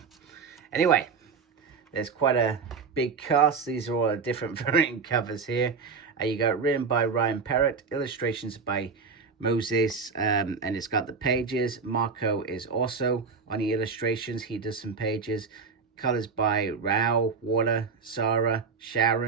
Anyway. There's quite a big cast. These are all different variant covers here. You got written by Parrot, illustrations by Moses, and it's got the pages. Marco is also on the illustrations. He does some pages. Colors by Rao, Water, Sarah,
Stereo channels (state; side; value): quieter; left; 5.2 dB